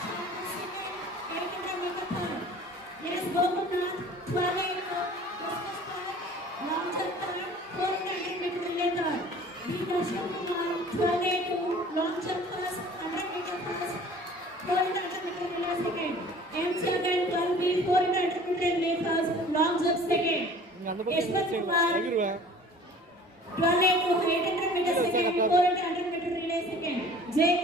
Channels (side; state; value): both; normal; correlation 0.47